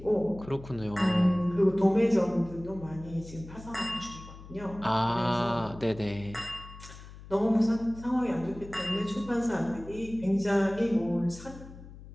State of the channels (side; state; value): left; noise; hum, 16 dB below the sound